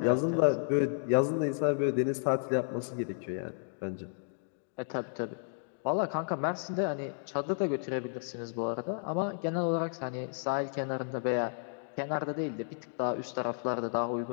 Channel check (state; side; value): silent; right; digital silence